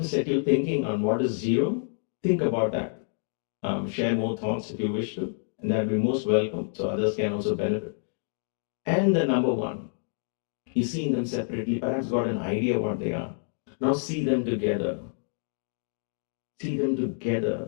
set you thinking on what is zero. Think about that. Share more thoughts if you wish to. And that will be most welcome. So others can also benefit. And the number one. You've seen them separately, perhaps got an idea what they are. Now see them together. See them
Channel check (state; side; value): silent; right; 60 dB below the other